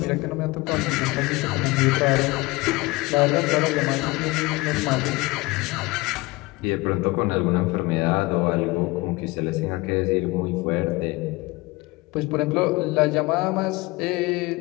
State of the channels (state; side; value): quieter; right; 22.9 dB